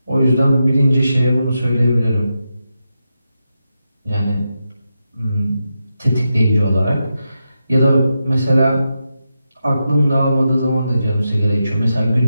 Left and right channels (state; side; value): inverted; both; correlation -0.87